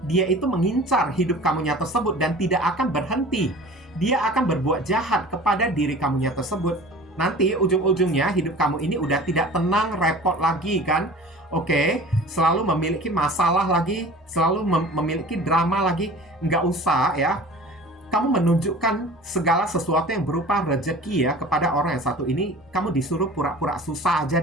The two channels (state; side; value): normal; both; correlation 0.42